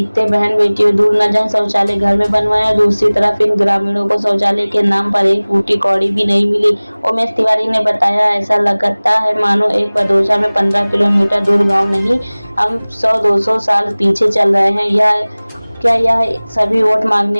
बहन बेटियों दूर न जाएं, शौचालय घर में बनवाएं, और दूसरी तरफ इन ग्रामीणों को शौचालय के नाम पर एक फूटी कौड़ी भी नहीं मिली। उमेश तिवारी ने बताया, ऐसा लगता है मानो एक बदोशा में 15 किलोमीटर दूर गाँव नहीं, हम 100-200 साल पीछे चल रहे हैं। क्या यह सभी वोट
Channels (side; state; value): both; inverted; correlation -1.00